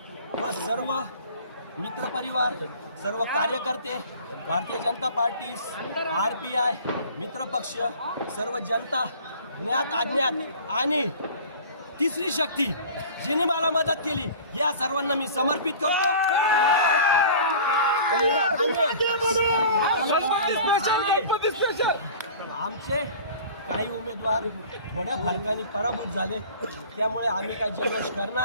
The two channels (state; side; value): inverted; both; correlation -0.42